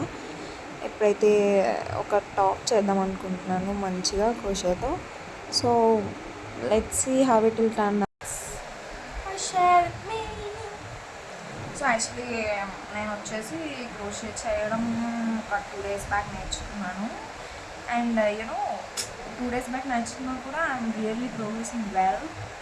ఎప్పుడైతే ఒక టాప్ చేద్దాం అనుకుంటున్నాను మంచిగా క్రోషేతో. So let's see how it will turn. So actually నేను వచ్చేసి క్రోషే చేయడం ఒక 2 days బ్యాక్ నేర్చుకున్నాను. అండ్ యూనో 2 days బ్యాక్ నేర్చుకున్నా కూడా I'm really progressing well.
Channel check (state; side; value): identical; both; correlation 1.00